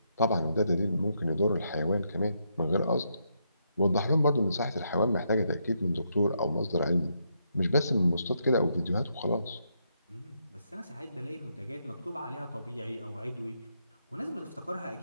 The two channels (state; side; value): inverted; both; correlation -0.78